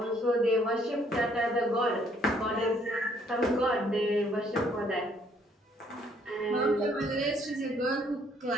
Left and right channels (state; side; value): normal; both; correlation 0.65